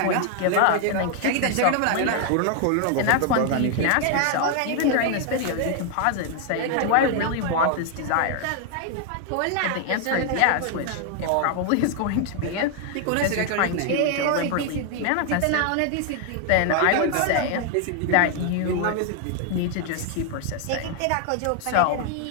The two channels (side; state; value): both; different; correlation 0.00